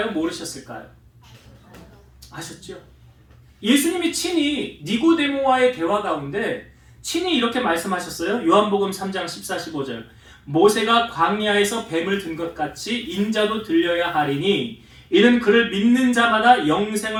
모르셨을까요? 아셨죠? 예수님이 친히 니고데모와의 대화 가운데 친히 이렇게 말씀하셨어요. 요한복음 3장 14, 15절 모세가 광야에서 뱀을 든 것 같이 인자도 들려야 하리니 이는 그를 믿는 자마다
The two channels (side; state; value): both; identical; correlation 1.00